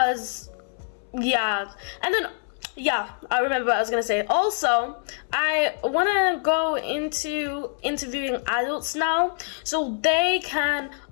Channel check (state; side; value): silent; right; 62 dB below the other